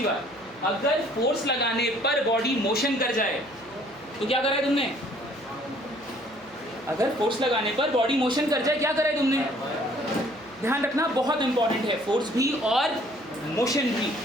बात, अगर फोर्स लगाने पर बॉडी मोशन कर जाए तो क्या करा है तुमने? अगर फोर्स लगाने पर बॉडी मोशन कर जाए, क्या करा है तुमने? ध्यान रखना, बहुत इंपॉर्टेंट है। फोर्स भी और मोशन भी,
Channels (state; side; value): noise; right; hum, 26 dB below the sound